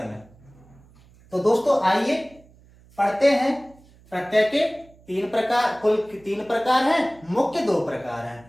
में। तो दोस्तों आइए पढ़ते हैं। प्रत्यय के 3 प्रकार, कुल 3 प्रकार हैं, मुख्य 2 प्रकार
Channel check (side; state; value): right; noise; hum, 27 dB below the sound